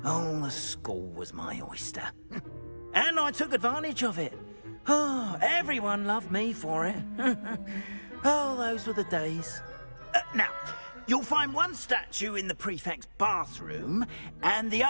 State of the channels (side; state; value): both; inverted; correlation -1.00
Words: Oh, the school was my oyster. And I took advantage of it. Oh, everyone loved me for it. Oh, those were the days. Now, you'll find one statue in the prefect's bathroom and the